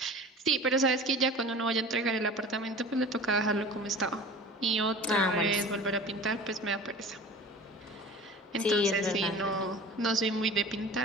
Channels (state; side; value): normal; both; correlation 0.39